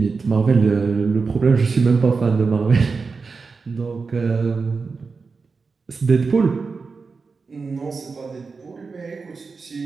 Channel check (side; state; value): left; quieter; 4.6 dB